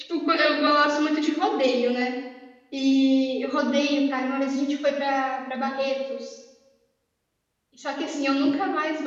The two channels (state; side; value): identical; both; correlation 1.00